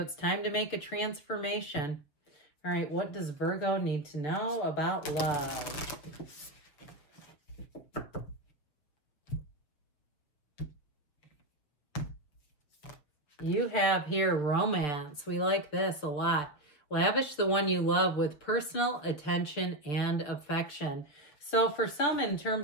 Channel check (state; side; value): late; right; 6.9 ms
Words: time to make a transformation. All right, what does Virgo need to know about love? You have here romance. We like this a lot. Lavish the one you love with personal attention and affection. So for some, in